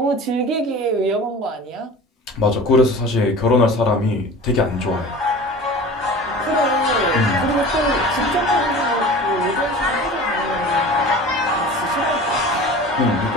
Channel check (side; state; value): both; normal; correlation 0.39